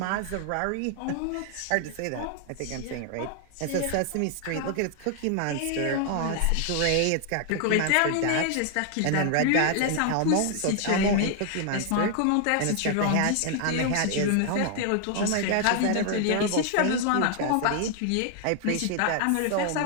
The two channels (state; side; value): different; both; correlation 0.00